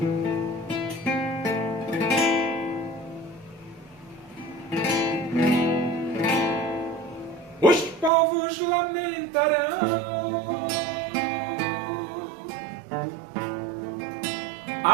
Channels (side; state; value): left; drops out; at 8.1 s